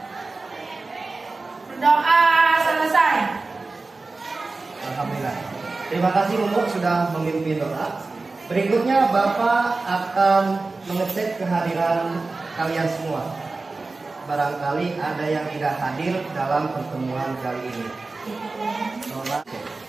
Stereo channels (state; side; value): quieter; left; 3.6 dB